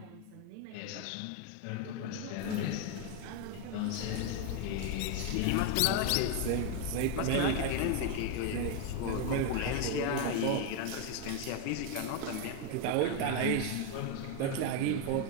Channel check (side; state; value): both; different; correlation 0.01